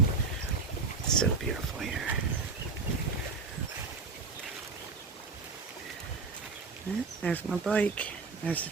So beautiful here. There's my bike. There's the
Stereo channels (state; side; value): quieter; left; 4.4 dB